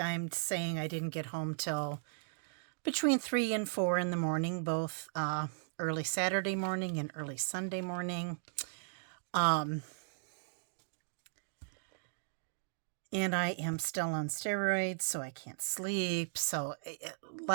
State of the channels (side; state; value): left; silent; digital silence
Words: I'm saying, I didn't get home till between 3 and 4 in the morning, both early Saturday morning and early Sunday morning. And I am still on steroids, so I can't sleep. So